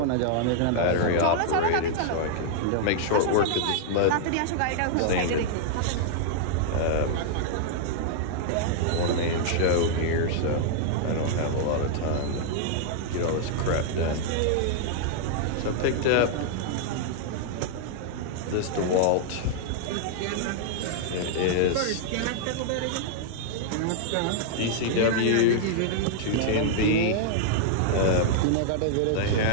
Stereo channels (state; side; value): different; both; correlation -0.01